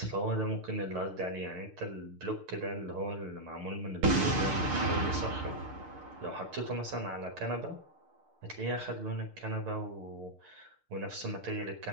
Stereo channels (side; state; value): left; late; 6.6 ms